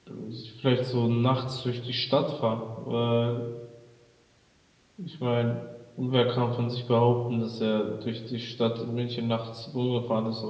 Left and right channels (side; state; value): both; identical; correlation 1.00